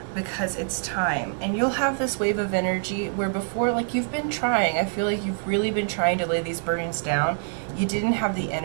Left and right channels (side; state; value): left; silent; 60 dB below the other